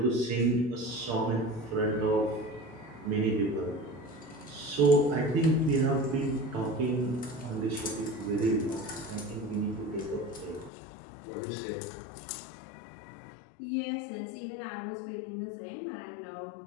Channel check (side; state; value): right; drops out; at 10.7 s